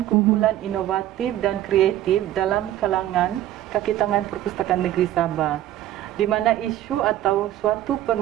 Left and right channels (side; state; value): left; quieter; 13.2 dB